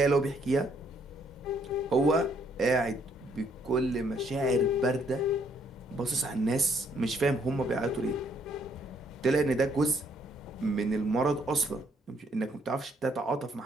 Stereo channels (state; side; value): normal; both; correlation 0.68